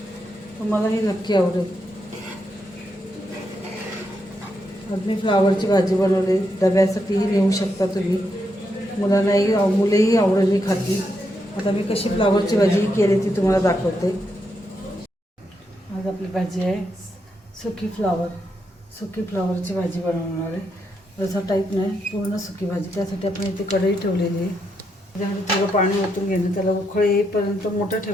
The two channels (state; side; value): normal; both; correlation 0.81